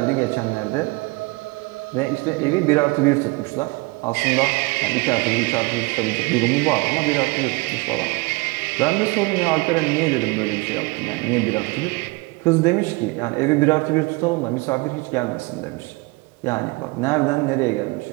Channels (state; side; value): quieter; left; 25.6 dB